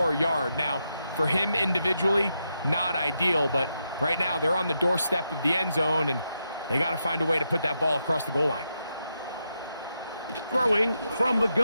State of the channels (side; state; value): both; inverted; correlation -0.84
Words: yard? Now, for him individually, not ideal, but right now they're on the doorstep of the end zone, and they got to find a way to put that ball across the goal line. Throwing from the